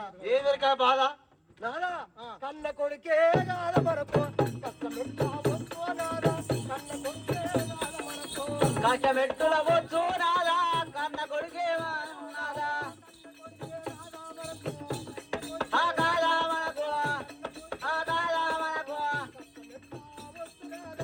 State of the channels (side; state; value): both; identical; correlation 1.00